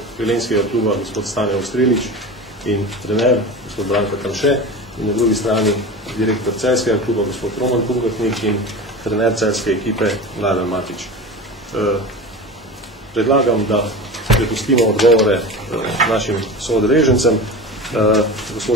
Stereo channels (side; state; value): both; normal; correlation 0.30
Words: velenjskega kluba gospod Stane Ostrilič in trener gospod Branko Tamše, in na drugi strani direktor celjskega kluba gospod Roman Pungatnik in trener celjske ekipe Mladen Matič. Predlagam, da prepustimo odgovore našim soodeležencem.